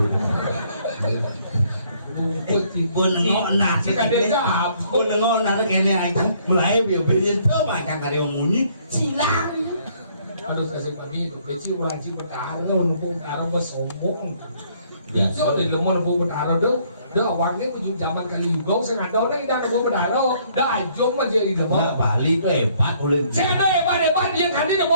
pun nengok nak pun nengok nak kene aja mulai biar tuh macam kali yang bunyi silang aduh kasih kami itu kecil wajib bertaruh nunggu bertaruh bersombong itu dari lemah nunggu bertaruh dah awalnya tujuh zaman kali juga saya ada orang yang nunggu bertaruh dah ajong aja di lemah Bali itu hebat boleh saya ada hebat dia kan dia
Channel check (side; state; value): both; inverted; correlation -0.65